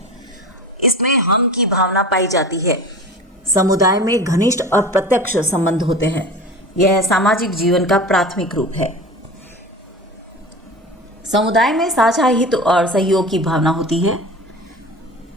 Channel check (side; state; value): both; normal; correlation 0.34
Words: इसमें हम की भावना पाई जाती है। समुदाय में घनिष्ठ और प्रत्यक्ष संबंध होते हैं। यह सामाजिक जीवन का प्राथमिक रूप है। समुदाय में साझा हित और सहयोग की भावना होती है।